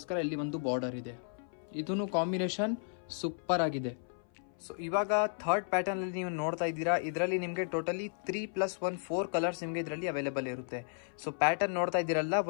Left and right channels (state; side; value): silent; right; 55 dB below the other